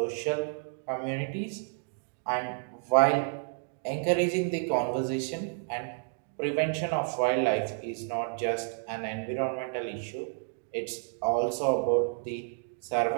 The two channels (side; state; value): left; silent; digital silence